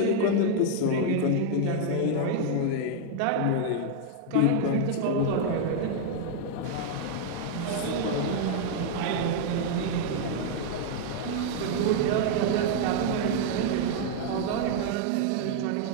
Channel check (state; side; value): different; both; correlation 0.00